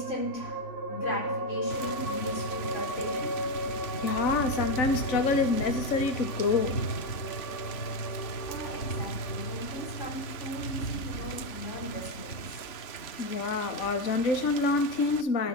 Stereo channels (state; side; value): late; right; 3.5 ms